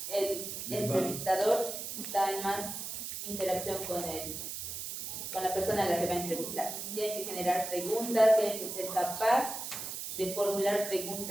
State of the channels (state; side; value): noise; right; hiss, 6 dB below the sound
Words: el entrevistador está en más interacción con la persona a la que va a entrevistar. Tiene que generar preguntas, tiene que ser capaz de formular